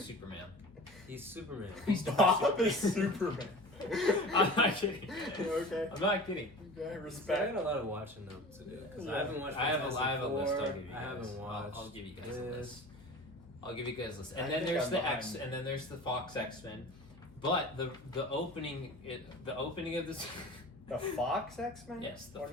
Superman. He's Superman. Bob is Superman. I'm not kidding. Okay. I'm not kidding. Okay, I respect. got a lot of watching them to do because Yeah. I haven't watched. I have a list. I'll Fantastic give you Four. guys. I haven't watched. I'll give you guys a this. list. I'll give you guys a list. I And then think there's I'm the behind. X, and then there's the Fox X-Men. But the opening of this. The Fox X-Men? Yes, the What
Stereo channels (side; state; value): left; noise; hum, 23 dB below the sound